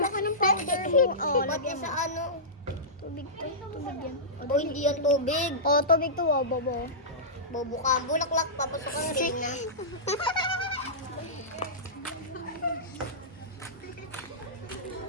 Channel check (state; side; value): normal; both; correlation -0.17